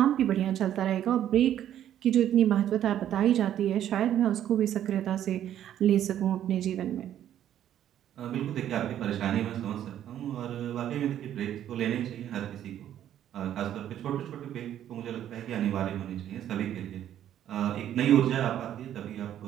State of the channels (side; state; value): left; quieter; 11.0 dB